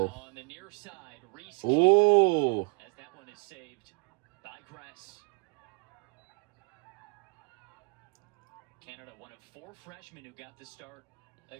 on the near side. Reese Ooh. as that one is saved by Gress. Canada, one of 4 freshmen who got the start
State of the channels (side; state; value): left; quieter; 35.2 dB